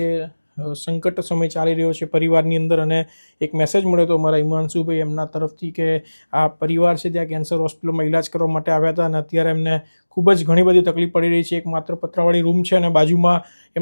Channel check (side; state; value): both; inverted; correlation -1.00